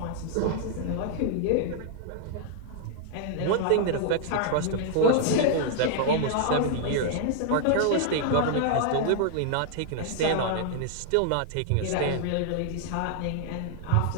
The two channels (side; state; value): both; different; correlation -0.01